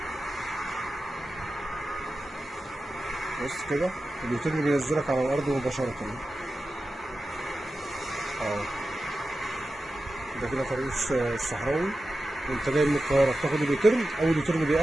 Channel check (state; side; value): normal; both; correlation 0.93